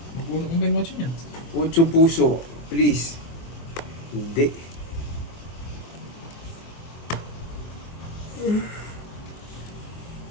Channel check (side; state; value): right; late; 24 ms